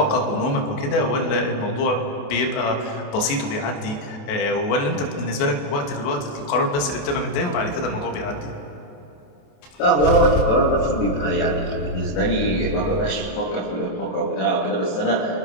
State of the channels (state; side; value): late; right; 28 ms